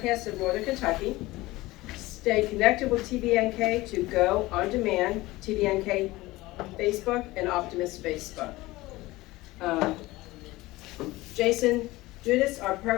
of Northern Kentucky. Stay connected with TVNK to go on demand, TVNK Facebook and Optimist Facebook. Jason Judas, our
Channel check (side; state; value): right; quieter; 19.4 dB